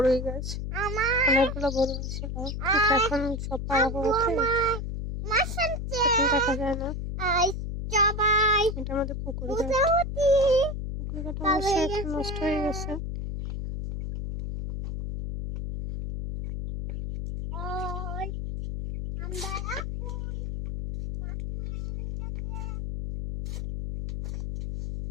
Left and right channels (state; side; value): noise; left; hum, 4 dB below the sound